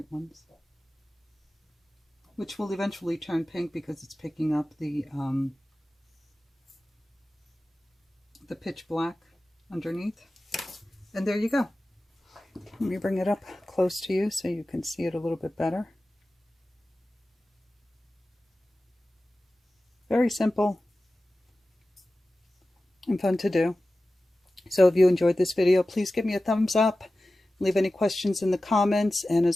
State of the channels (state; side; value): normal; both; correlation 0.95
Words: ones, which will eventually turn pink because it's picking up the pitch black underneath. And there you go. Let me bring it up close to you so you can see it a little bit better. Very simple and fun to do. So if you enjoyed this video, please give me a thumbs up. Leave any questions in the comments. And